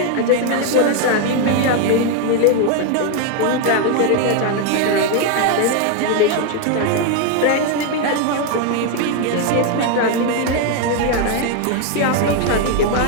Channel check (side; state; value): both; different; correlation 0.01